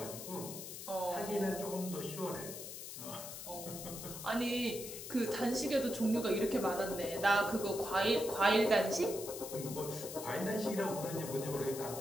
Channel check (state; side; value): noise; left; hiss, 9 dB below the sound